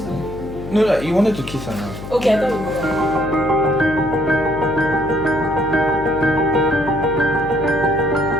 No, you wanted to kiss her now. Okay, I thought we were.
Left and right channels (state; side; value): noise; left; hum, 11 dB below the sound